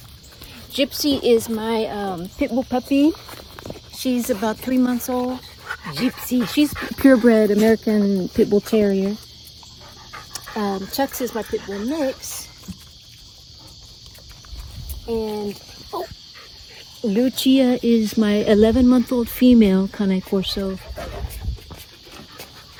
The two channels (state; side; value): identical; both; correlation 1.00